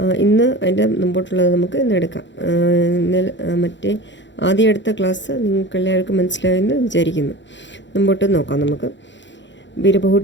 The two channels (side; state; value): right; late; 0.53 ms